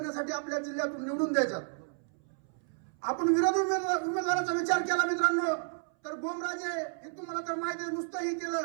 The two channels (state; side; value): silent; left; 57 dB below the other